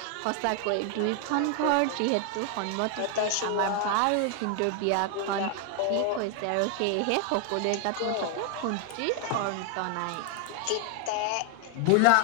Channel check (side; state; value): both; different; correlation 0.00